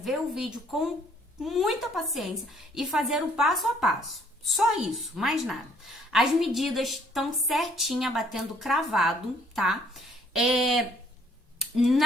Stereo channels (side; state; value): both; normal; correlation 0.62